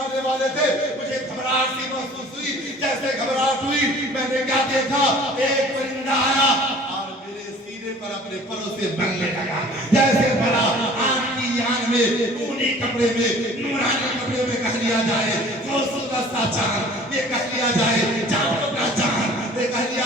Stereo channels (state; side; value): normal; both; correlation 0.49